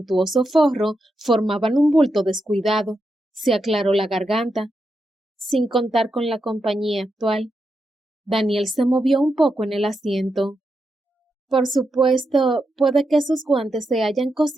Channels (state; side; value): normal; both; correlation 0.85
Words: forro formaban un bulto descuidado. Se aclaró la garganta, sin contar con la compañía actual. Daniel se movió un poco en el asiento. Por supuesto, puede que sus guantes se hayan